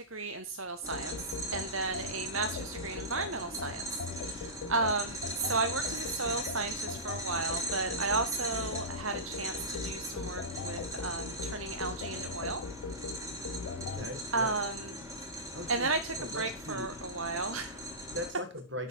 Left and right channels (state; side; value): normal; both; correlation -0.19